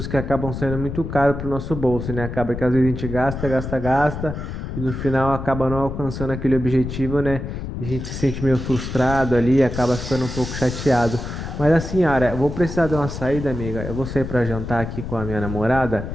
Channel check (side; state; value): left; noise; rumble, 7 dB below the sound